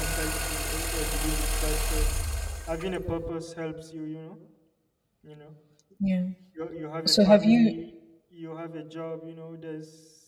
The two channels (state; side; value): identical; both; correlation 1.00